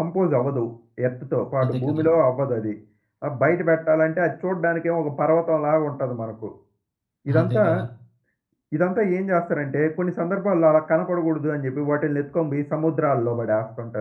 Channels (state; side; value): identical; both; correlation 1.00